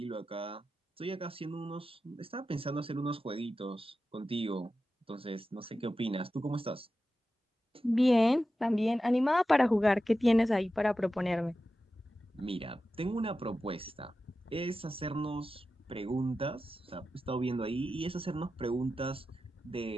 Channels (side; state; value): both; normal; correlation 0.92